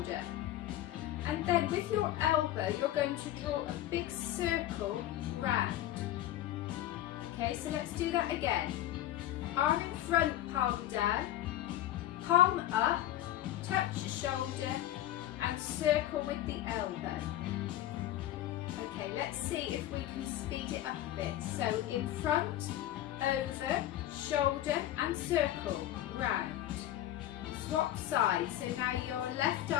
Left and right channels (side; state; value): right; quieter; 13.4 dB